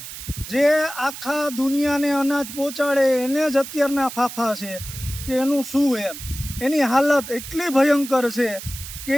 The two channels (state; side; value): noise; right; hiss, 11 dB below the sound